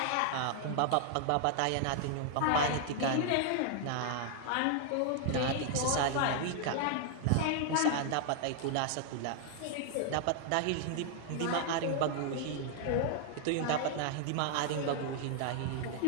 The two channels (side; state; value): both; different; correlation -0.01